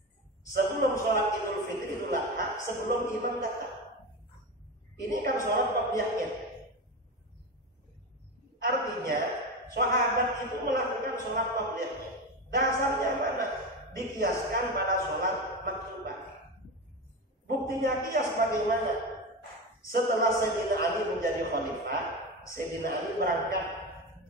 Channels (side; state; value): both; normal; correlation 0.21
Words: sebelum sholat Idul Fitri, Idul Adha, sebelum imam datang. Ini kan sholat qabliyah Id. Artinya sahabat itu melakukan sholat qabliyah Id. Dasarnya mana? Dikiaskan pada sholat maktubah. Buktinya kias bagaimana? Setelah Sayyidina Ali menjadi khalifah, Sayyidina Ali berangkat